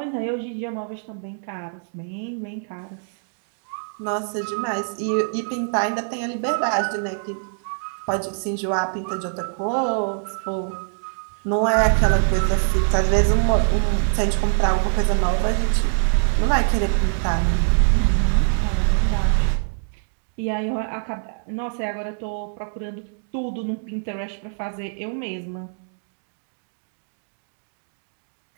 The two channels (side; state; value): left; silent; digital silence